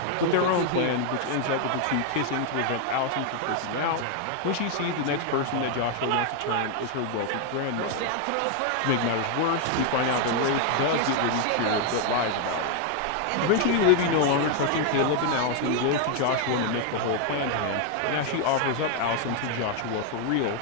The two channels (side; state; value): both; different; correlation 0.00